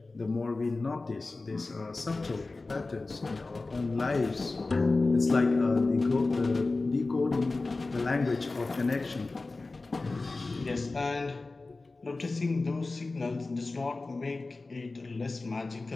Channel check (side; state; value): right; quieter; 3.4 dB